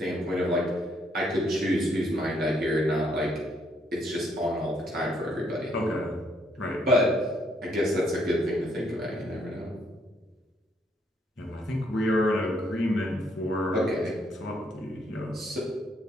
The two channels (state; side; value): normal; both; correlation 0.71